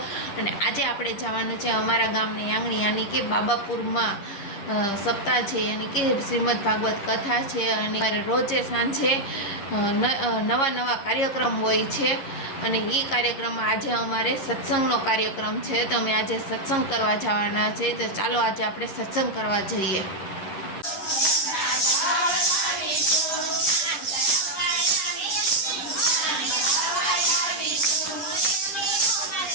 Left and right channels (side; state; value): right; late; 10 ms